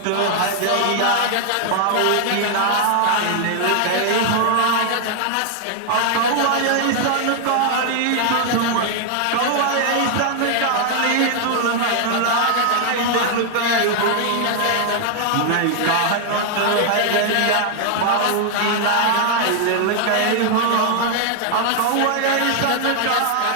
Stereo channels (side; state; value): both; different; correlation 0.00